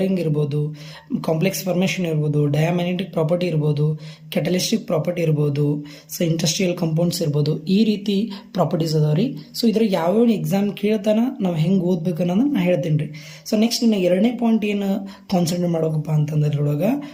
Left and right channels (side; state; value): both; identical; correlation 1.00